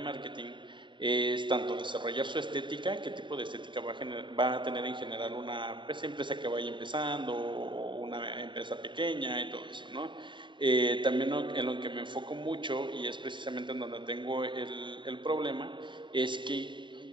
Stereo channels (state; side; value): late; left; 0.23 ms